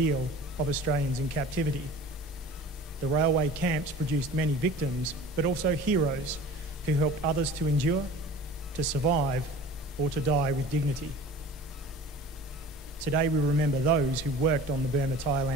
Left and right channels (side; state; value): both; normal; correlation 0.41